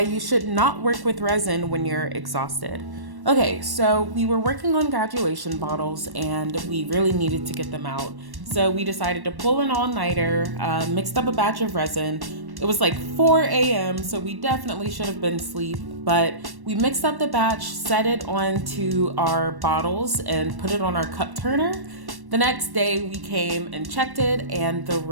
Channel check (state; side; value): late; left; 1.1 ms